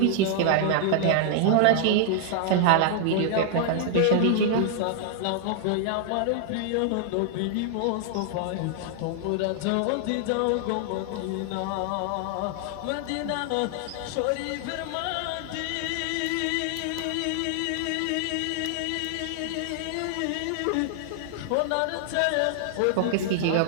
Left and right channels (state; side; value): different; both; correlation 0.00